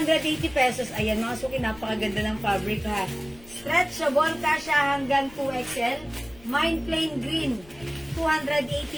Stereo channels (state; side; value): noise; left; rumble, 22 dB below the sound